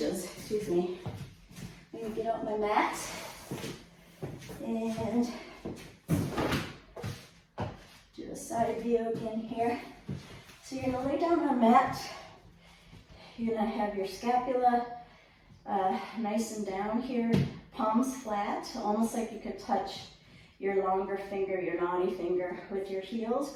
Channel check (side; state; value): both; identical; correlation 1.00